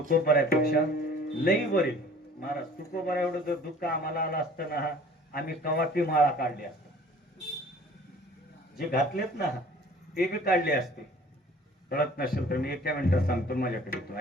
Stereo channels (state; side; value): normal; both; correlation 0.50